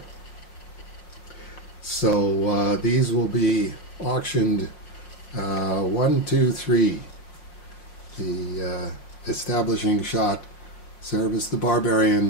So these will be auctioned 1, 2, 3. The establishing shot, Cerebus the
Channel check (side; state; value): right; late; 5.6 ms